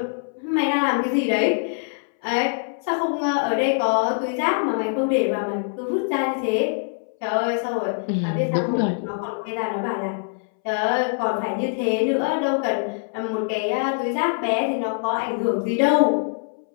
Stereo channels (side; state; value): right; silent; 63 dB below the other